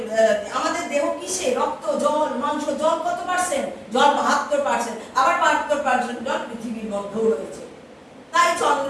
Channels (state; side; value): identical; both; correlation 1.00